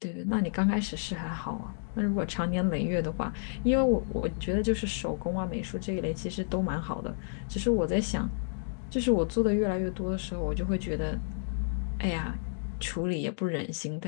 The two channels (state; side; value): silent; right; digital silence